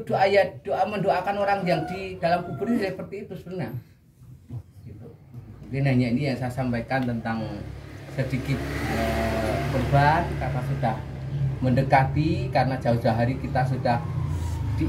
doa mendoakan orang yang di dalam kubur ini seperti itu sebenarnya. Gitu. Mungkin hanya ini yang saya sampaikan tentang sedikit kurban karena sudah mendekati, karena jauh-jauh hari kita sudah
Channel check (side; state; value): both; identical; correlation 1.00